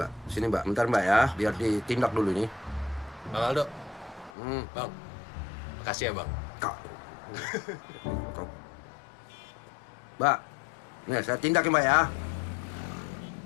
Sini, Mbak. Bentar, Mbak ya. Biar ditindak dulu nih. Bang Aldo. Bang. Makasih ya, Bang. Kak. Kau. Mbak. Nih, saya tindak ya, Mbak ya.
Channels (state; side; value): drops out; right; at 4.3 s